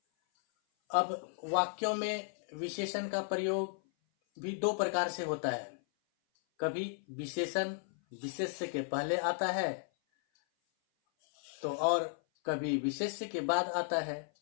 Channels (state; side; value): silent; right; 55 dB below the other